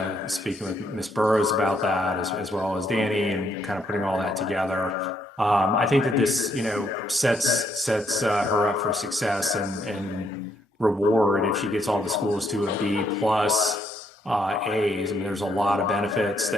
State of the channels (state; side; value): normal; both; correlation 0.73